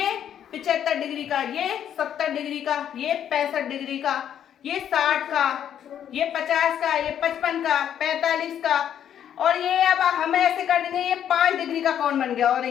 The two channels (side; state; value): right; quieter; 9.7 dB